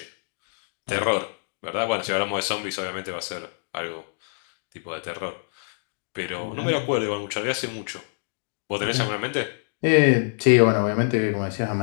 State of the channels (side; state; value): right; silent; digital silence